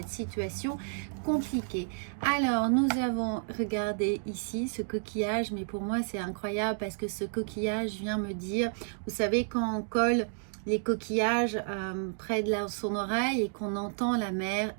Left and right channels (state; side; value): silent; left; digital silence